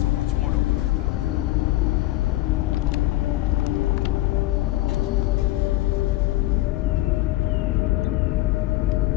so much more to learn about now.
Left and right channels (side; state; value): right; quieter; 17.4 dB